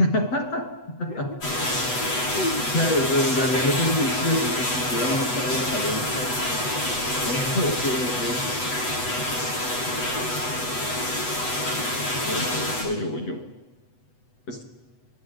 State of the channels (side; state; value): right; late; 8.1 ms